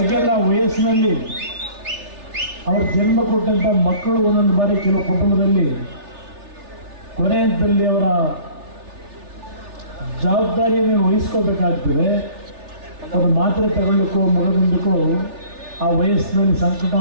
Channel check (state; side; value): late; left; 3.4 ms